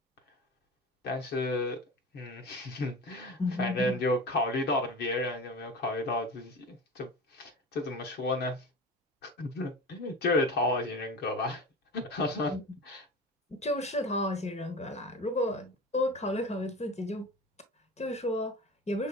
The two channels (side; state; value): both; normal; correlation 0.32